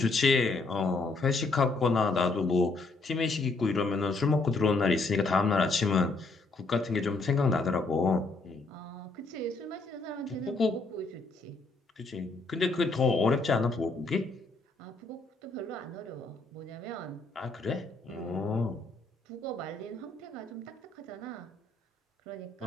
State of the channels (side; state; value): right; quieter; 3.5 dB